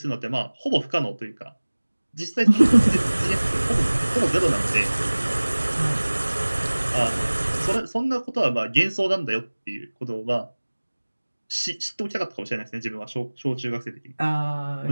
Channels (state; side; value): inverted; both; correlation -1.00